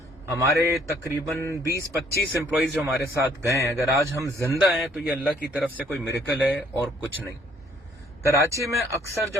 हमारे तकरीबन 20-25 एम्प्लॉइज जो हमारे साथ गए हैं, अगर आज हम जिंदा हैं तो ये अल्लाह की तरफ से कोई मिरेकल है और कुछ नहीं। कराची में अक्सर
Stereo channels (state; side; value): normal; both; correlation 0.62